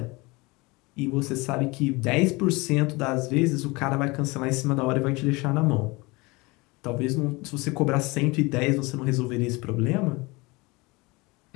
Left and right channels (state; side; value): quieter; right; 24.6 dB